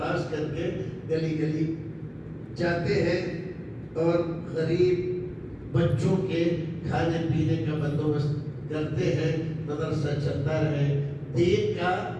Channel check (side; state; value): both; identical; correlation 1.00